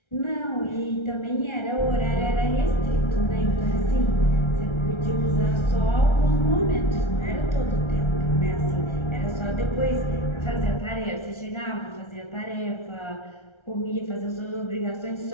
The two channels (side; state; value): right; late; 1.3 ms